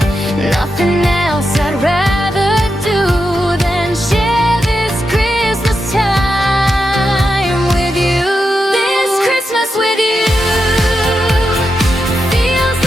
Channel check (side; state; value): both; normal; correlation 0.87